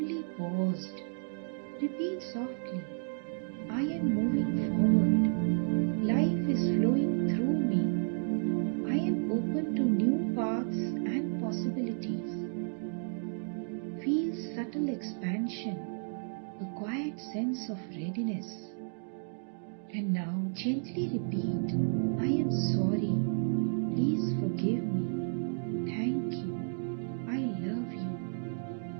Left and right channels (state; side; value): silent; left; digital silence